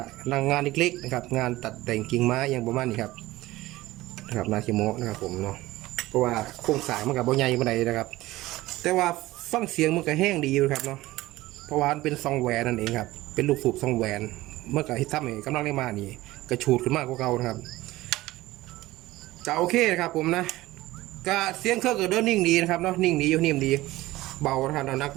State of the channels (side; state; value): left; quieter; 17.8 dB